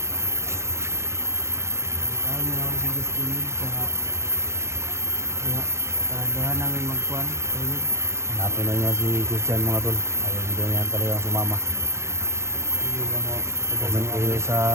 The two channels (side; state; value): left; late; 0.13 ms